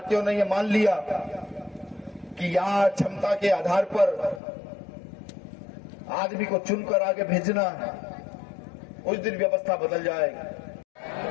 ने ये मान लिया कि यहाँ क्षमता के आधार पर आदमी को चुनकर आगे भेजना है, उस दिन व्यवस्था बदल जाएगी।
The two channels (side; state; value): right; drops out; at 4.4 s